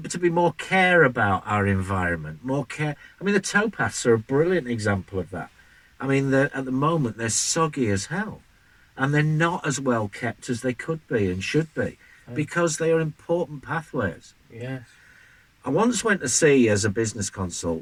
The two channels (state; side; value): identical; both; correlation 1.00